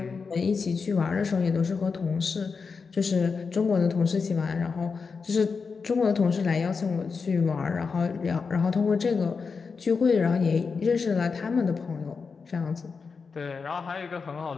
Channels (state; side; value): quieter; right; 5.1 dB